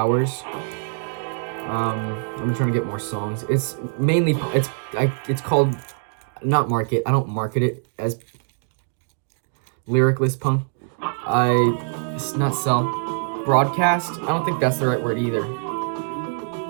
I've been trying to get more songs. It's mainly it's called not market. I don't market it as lyricless punk. It's not sell. Broadcast. I don't think that's the right word either.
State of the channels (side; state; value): left; silent; 63 dB below the other